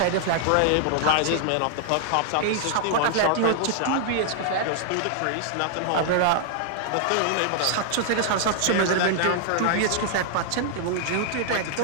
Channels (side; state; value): both; different; correlation 0.00